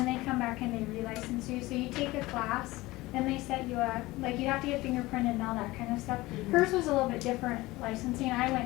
they come back and they relicense you. So you take a class, and they set you up, like you have to get fingerprinted and all that kind of stuff. Hers was a little bit different licensing. I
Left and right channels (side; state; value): right; quieter; 19.6 dB